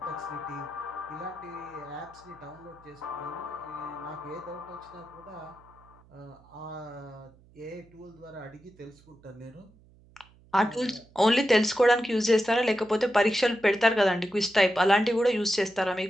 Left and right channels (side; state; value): right; noise; hum, 27 dB below the sound